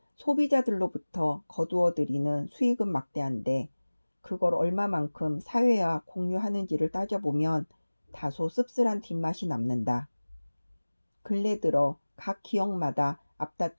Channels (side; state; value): both; inverted; correlation -1.00